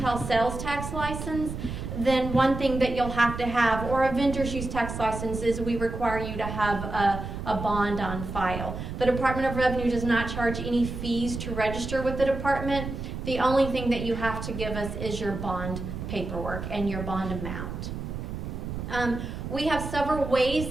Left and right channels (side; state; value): right; noise; rumble, 6 dB below the sound